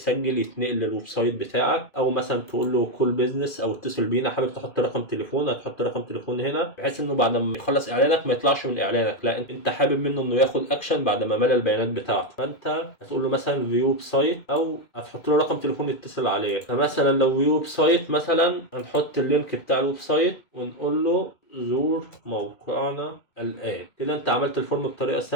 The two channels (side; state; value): right; late; 2.4 ms